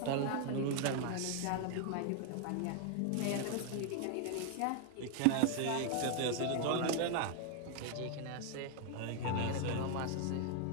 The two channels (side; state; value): both; different; correlation 0.00